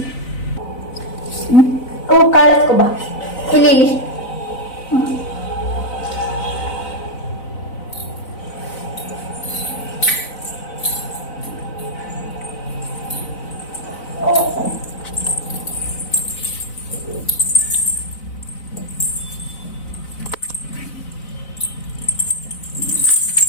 ಓ ಕಾಳು ಎತ್ಕೊಬಾ, ಇಲ್ಲಿ ಇಲ್ಲಿ.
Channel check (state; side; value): late; right; 4.0 ms